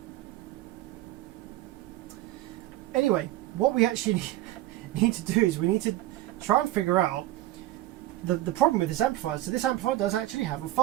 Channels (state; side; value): quieter; left; 16.0 dB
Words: anyway, what we actually need to do is we need to try and figure out the problem with this amplifier. So this amplifier does actually have a